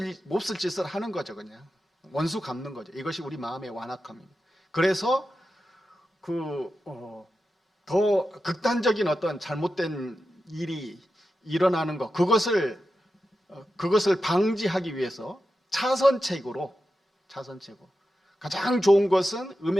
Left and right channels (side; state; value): both; normal; correlation 0.91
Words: 짓을 하는 거죠. 그냥 원수 갚는 거죠. 이것이 우리 마음의 완악함입니다. 그래서 더 극단적인 어떤 잘못된 일이 일어나는 것, 그것을 방지하기 위해서 차선책으로 가장 좋은 것은